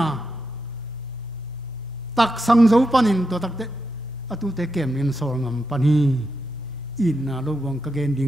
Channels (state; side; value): normal; both; correlation 0.86